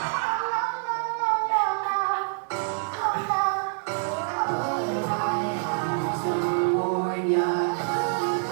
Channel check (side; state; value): left; silent; digital silence